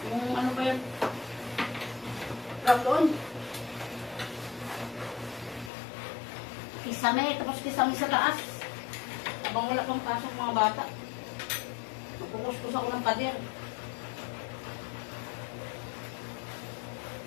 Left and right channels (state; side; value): drops out; right; at 5.7 s